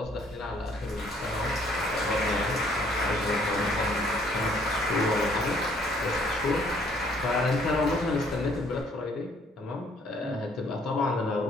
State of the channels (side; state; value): both; normal; correlation 0.62